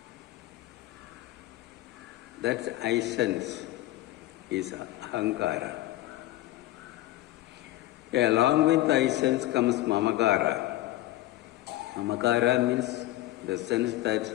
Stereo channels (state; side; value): quieter; right; 16.1 dB